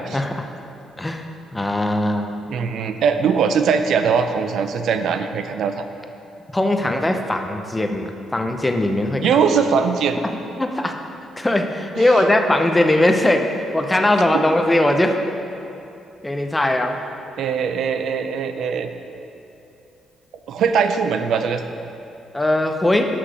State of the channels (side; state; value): both; normal; correlation 0.81